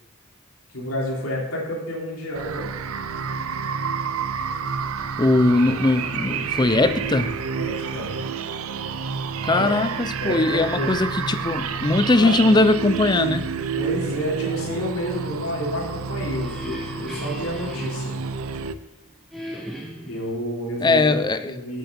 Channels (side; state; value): both; normal; correlation 0.51